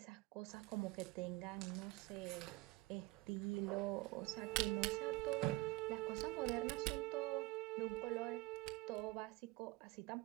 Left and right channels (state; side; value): quieter; left; 21.6 dB